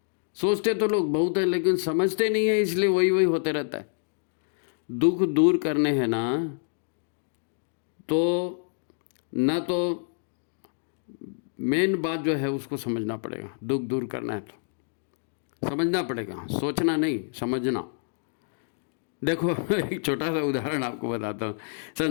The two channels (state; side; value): silent; right; digital silence